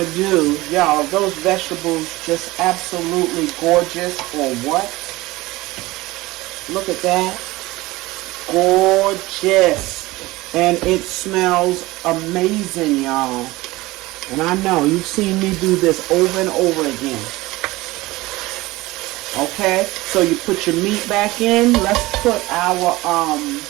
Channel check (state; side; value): quieter; left; 19.8 dB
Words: do, y'all, those vegetables just absolutely gorgeous or what? Look at that. Gorgeous. And it smells amazing, y'all. And I know you've seen me do this over and over again. Okay, so you put your meat back in. Let's put our,